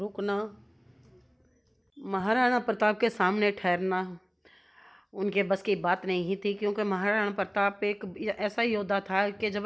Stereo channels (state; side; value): identical; both; correlation 1.00